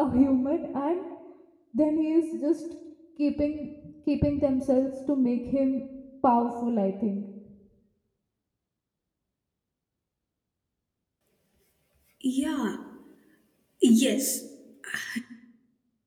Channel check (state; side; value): identical; both; correlation 1.00